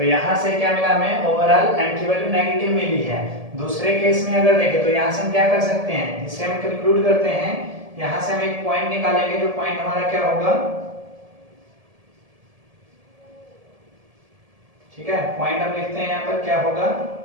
यहां से क्या मिला हमें, ओवरऑल m की वैल्यू नेगेटिव मिली है। दूसरे केस में अगर देखें तो यहां से हम क्या कर सकते हैं, इससे हम कंक्लूड करते हैं, यहां से हम एक पॉइंट निकालेंगे, जो पॉइंट हमारा क्या होगा, ठीक है, पॉइंट हम लिखते हैं यहां पर, क्या होगा,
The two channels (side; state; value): left; late; 1.7 ms